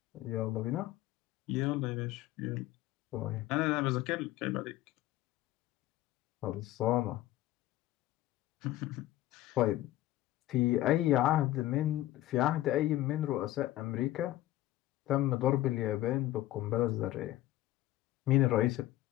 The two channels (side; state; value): right; quieter; 15.4 dB